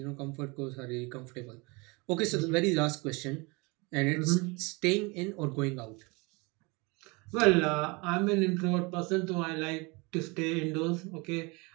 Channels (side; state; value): left; quieter; 27.4 dB